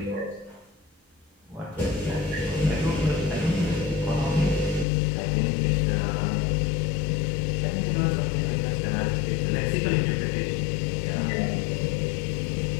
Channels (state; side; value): drops out; right; at 4.9 s